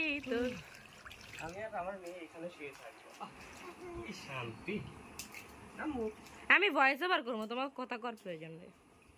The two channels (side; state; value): both; identical; correlation 1.00